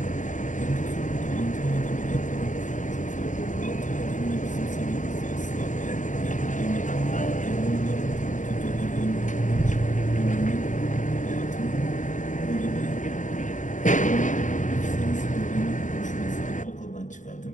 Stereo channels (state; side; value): late; right; 0.36 ms